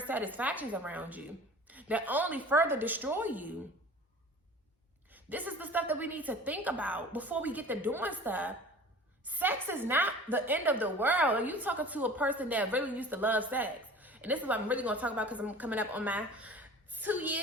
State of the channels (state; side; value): normal; both; correlation 0.42